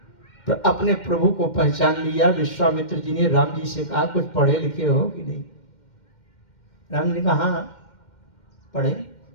अपने प्रभु को पहचान लिया। विश्वामित्र जी ने राम जी से कहा, कुछ पढ़े लिखे हो कि नहीं? राम जी ने कहा, हाँ पढ़े।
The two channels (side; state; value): right; late; 2.1 ms